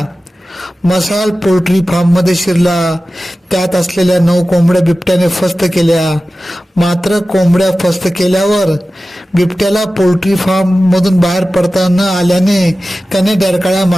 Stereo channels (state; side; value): normal; both; correlation 0.95